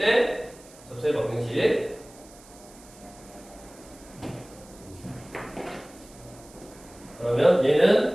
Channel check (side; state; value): right; noise; hiss, 23 dB below the sound